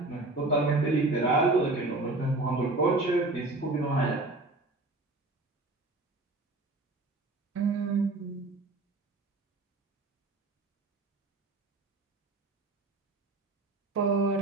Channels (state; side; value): quieter; left; 3.0 dB